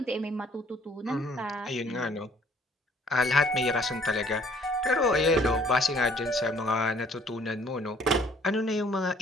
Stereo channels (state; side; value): normal; both; correlation 0.59